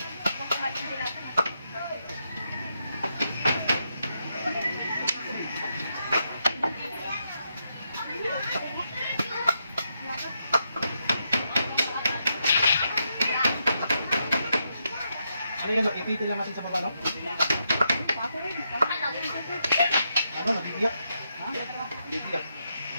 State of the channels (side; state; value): both; inverted; correlation -0.82